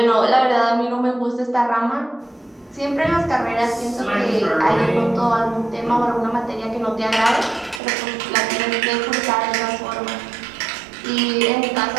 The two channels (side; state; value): left; drops out; at 7.8 s